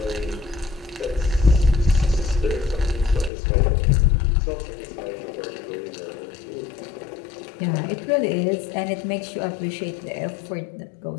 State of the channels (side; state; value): right; drops out; at 3.3 s